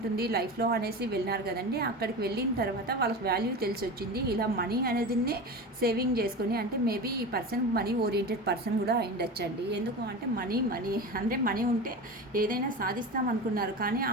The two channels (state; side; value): normal; both; correlation 0.28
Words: లైఫ్లో అనేసి వెళ్ళినారు కదండి. అక్కడికి వెళ్ళిన తర్వాత వాళ్ళకి వాల్యూ తెలిసి వచ్చింది. ఇలా మనీ అనేది సేవింగ్ చేసుకొని, అంటే మేబీ ఈ పర్సన్ మనీ ఓరియంటెడ్ పర్సన్ కూడా అయిండొచ్చండి. ఎందుకు అంటే మనీ అంటే మనీ ఉంటే ఏదైనా సాధిస్తాం అనుకున్నారు, కానీ